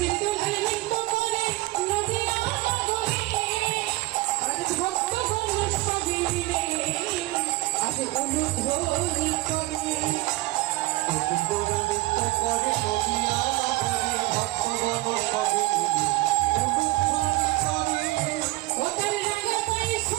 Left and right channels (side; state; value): left; quieter; 19.5 dB